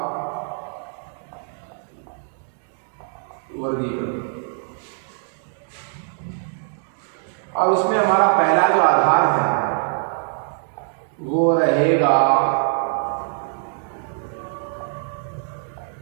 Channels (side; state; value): left; silent; 61 dB below the other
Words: वर्गीकरण। और उसमें हमारा पहला जो आधार है वो रहेगा